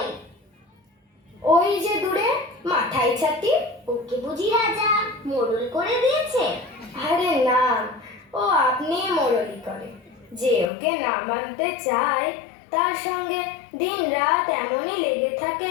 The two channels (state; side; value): drops out; right; at 10.7 s